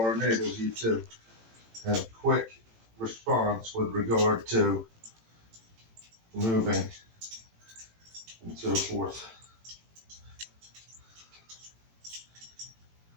enables you to have quick response with regard to moving and so forth.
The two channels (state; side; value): late; left; 18 ms